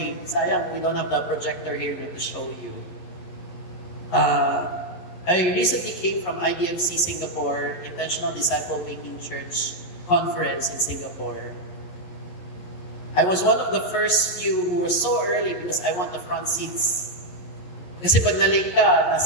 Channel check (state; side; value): late; right; 11 ms